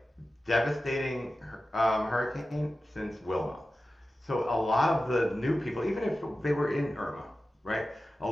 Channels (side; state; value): both; normal; correlation 0.94